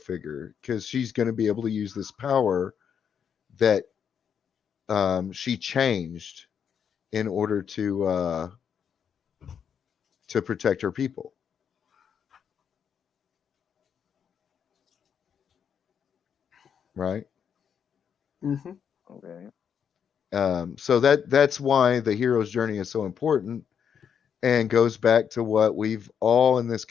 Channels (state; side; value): quieter; right; 7.7 dB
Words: because she's going to be able to use this power that she changed in order to protect her people. Right. Mm-hmm. Okay. So that's why the hero's journey is so important, and goes back to what we've all in this